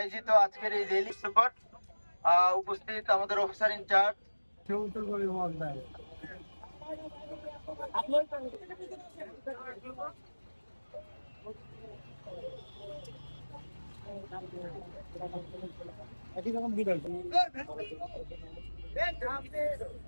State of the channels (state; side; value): inverted; both; correlation -1.00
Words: আজকের এই র্যালি উপস্থিত আমাদের অফিসার ইনচার্জ